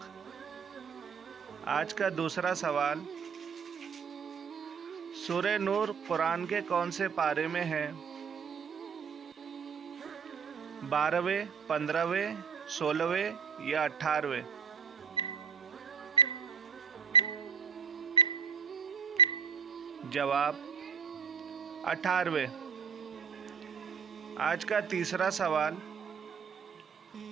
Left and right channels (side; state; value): left; quieter; 6.5 dB